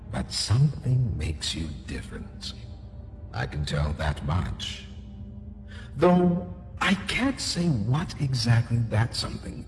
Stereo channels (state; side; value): identical; both; correlation 1.00